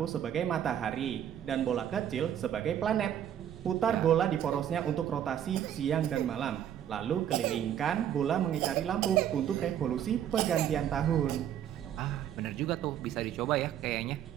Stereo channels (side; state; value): left; quieter; 10.1 dB